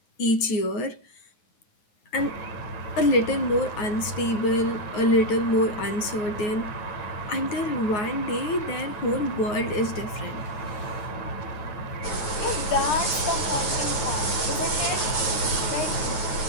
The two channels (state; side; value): late; right; 9.2 ms